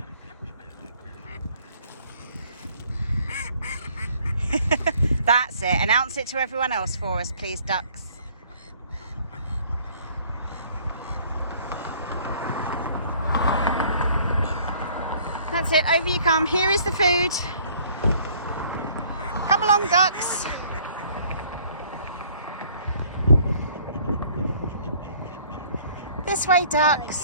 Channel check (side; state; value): both; inverted; correlation -0.57